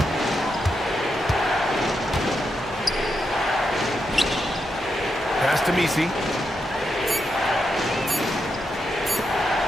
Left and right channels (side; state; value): both; normal; correlation 0.84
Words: Pass to Messi.